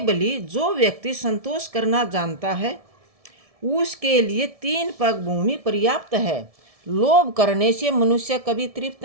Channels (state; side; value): late; left; 1.7 ms